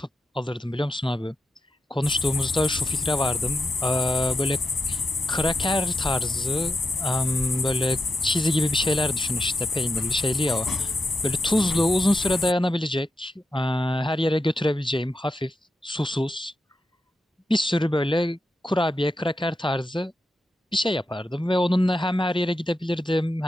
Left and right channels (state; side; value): normal; both; correlation 0.87